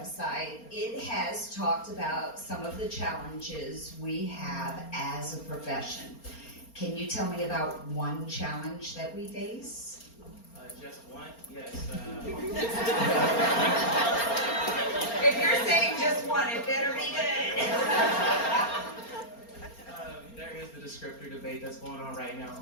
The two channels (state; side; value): late; right; 4.3 ms